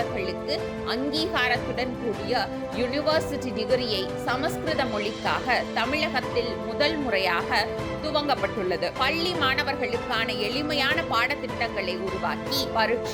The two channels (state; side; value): identical; both; correlation 1.00